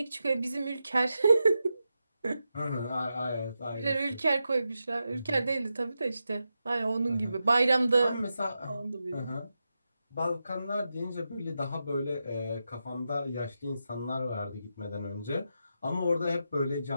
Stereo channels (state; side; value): inverted; both; correlation -0.88